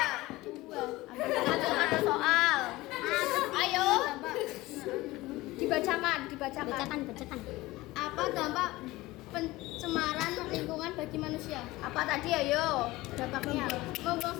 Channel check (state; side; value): quieter; right; 19.3 dB